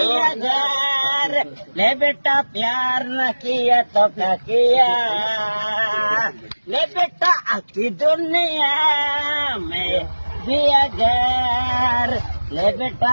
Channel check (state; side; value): inverted; both; correlation -1.00